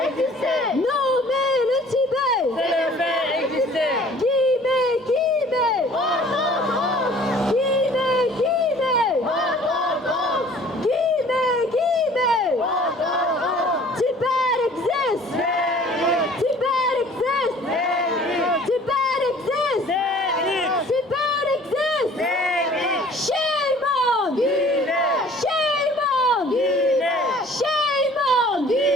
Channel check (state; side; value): normal; both; correlation 0.51